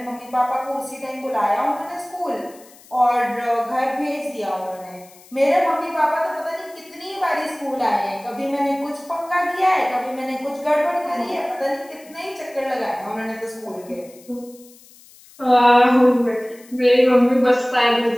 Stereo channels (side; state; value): left; noise; hiss, 24 dB below the sound